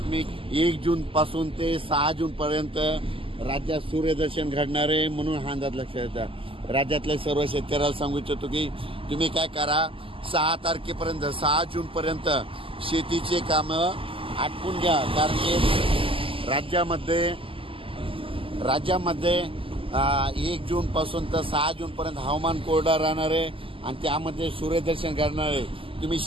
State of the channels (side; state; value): left; late; 0.26 ms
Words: 1 जून पासून ते 6 जून पर्यंत राज्यात सूर्यदर्शन घडणार आहे म्हणून हा अंदाज लक्षात येतात. राज्यातल्या सर्व शेतकऱ्याला सांगू इच्छितो की तुम्ही काय करा, 6 तारखेपर्यंत 6 जून पर्यंत शेतीचे कामं आटपून घ्या. कारण की राज्यामध्ये 1 जून पासून तर 6 जून पर्यंत हवामान कोरडं राहणार आहे आणि त्यामध्ये सूर्यदर्शन घडणार आहे. तुम्ही